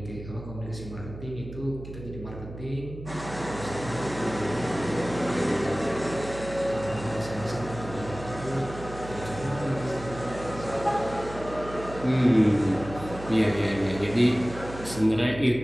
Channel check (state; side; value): noise; right; hum, 12 dB below the sound